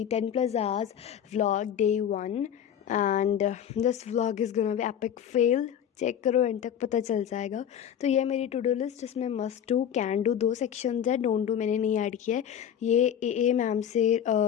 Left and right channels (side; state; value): right; quieter; 9.2 dB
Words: 10 plus hours vlog day 1 and this vlog is gonna be epic fail. Check करो end तक पता चल जाएगा. तो ये मेरी to do list जिसमें must do can do 2 sections है. डोंट डू मैंने नहीं ऐड किया है. ये ए मैम से